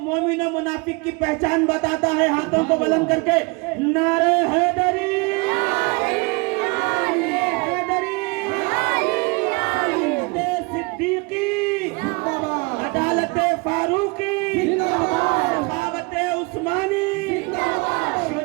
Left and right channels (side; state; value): left; quieter; 28.8 dB